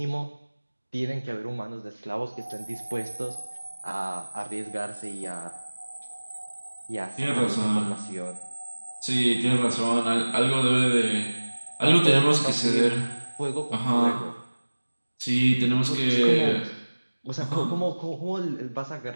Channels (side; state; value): both; inverted; correlation -1.00